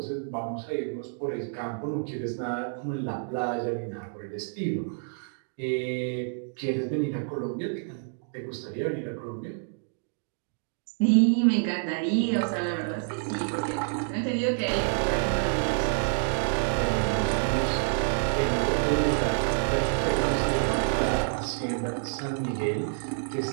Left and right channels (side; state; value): left; silent; digital silence